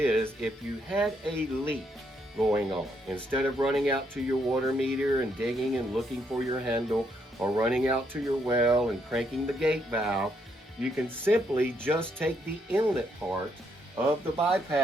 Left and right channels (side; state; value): both; normal; correlation 0.75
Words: if you had a leak going on, instead of running out to your water meter and digging and looking for your handle, or running out to your well and cranking the gate valve, you can simply just take the inlet part of the